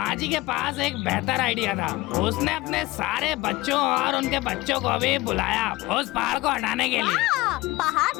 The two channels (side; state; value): right; quieter; 19.5 dB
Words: के पास एक बेहतर आइडिया था। उसने अपने सारे बच्चों और उनके बच्चों को भी बुलाया उस पहाड़ को हटाने के लिए। पहाड़